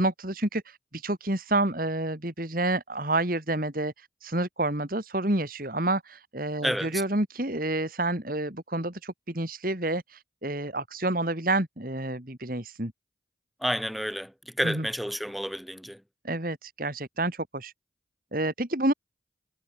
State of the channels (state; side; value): normal; both; correlation 0.31